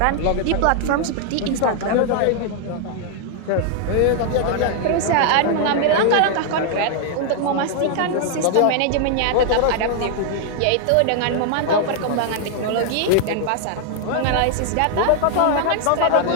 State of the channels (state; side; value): different; both; correlation 0.00